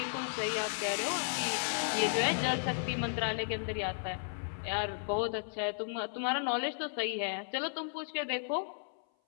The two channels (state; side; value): silent; right; 55 dB below the other